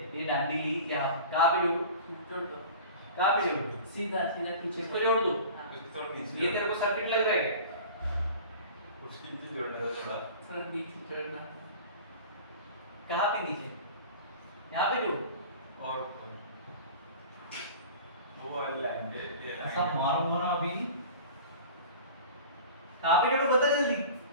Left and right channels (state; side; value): inverted; both; correlation -0.39